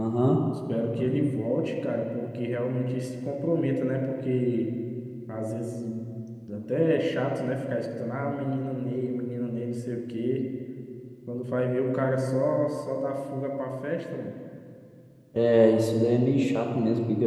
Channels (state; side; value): identical; both; correlation 1.00